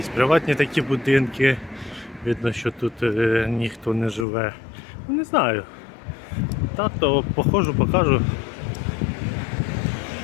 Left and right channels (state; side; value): drops out; right; at 4.2 s